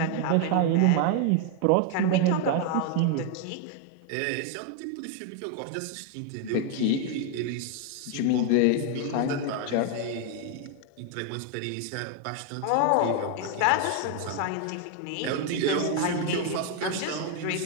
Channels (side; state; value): both; different; correlation 0.00